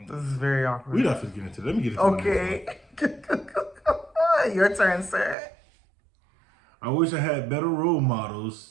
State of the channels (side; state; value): left; drops out; at 5.4 s